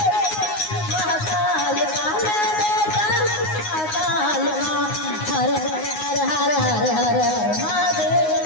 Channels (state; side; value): late; right; 9.6 ms